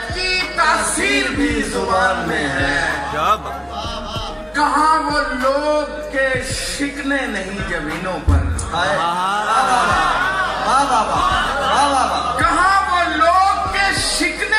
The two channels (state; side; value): identical; both; correlation 1.00